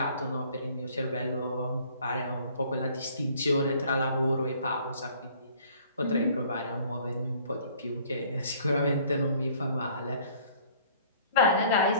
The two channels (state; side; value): inverted; both; correlation -0.55